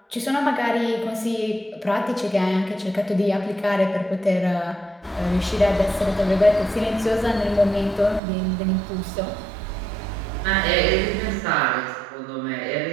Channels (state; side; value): drops out; left; at 8.2 s